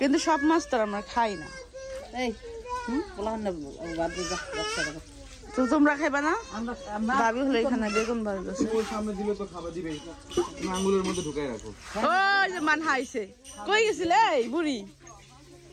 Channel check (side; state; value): both; identical; correlation 1.00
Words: সব মাছ তো আমরা খাই না। তো তোমরা খাইবা না? ভাবি হলো এখানে বেগুন বাড়ছে, ওর সামনে দিলে তো খাবার দিবেই, আঙুলের মধ্যে ঢুকাই রাখো। ওই যে মান হাইছে। কই গেছিলে এই বুড়ি?